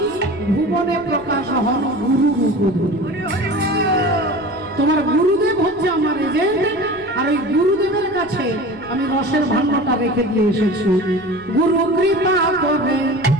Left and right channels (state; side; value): noise; left; rumble, 26 dB below the sound